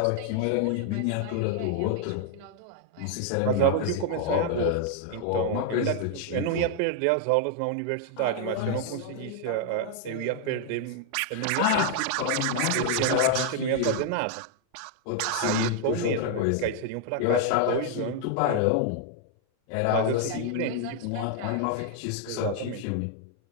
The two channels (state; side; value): different; both; correlation 0.00